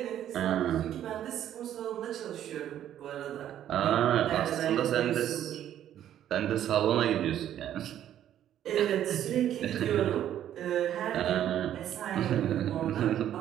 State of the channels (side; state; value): left; quieter; 11.1 dB